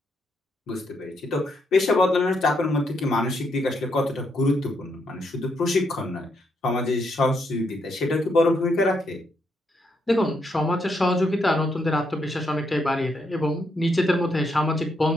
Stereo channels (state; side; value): normal; both; correlation 0.77